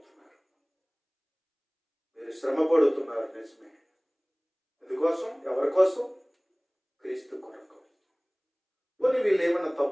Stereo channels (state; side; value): identical; both; correlation 1.00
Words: మీరు శ్రమ పడుతున్నారు నిజమే, ఎందుకోసం, ఎవరి కోసం? క్రీస్తు కొరకు. పోనీ వీళ్ళు ఏమన్నా